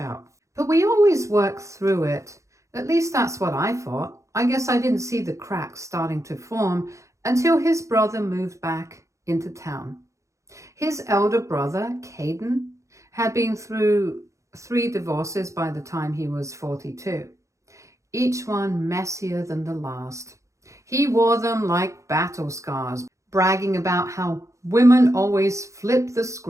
But we always worked through it. At least that's what I thought. I guess I didn't see the cracks starting to form until his brother moved back into town. His elder brother, Kaden, had been through 3 divorces by the time he was 42, each one messier than the last. He wore them like battle scars, bragging about how women always flip the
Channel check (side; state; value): left; late; 0.15 ms